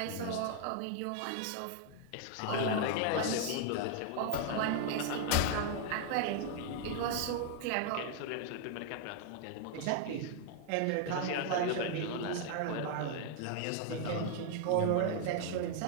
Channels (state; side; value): different; both; correlation 0.00